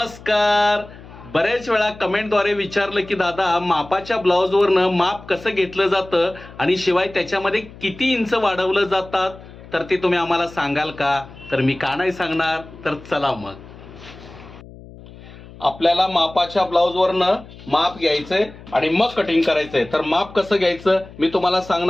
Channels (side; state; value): left; noise; hum, 18 dB below the sound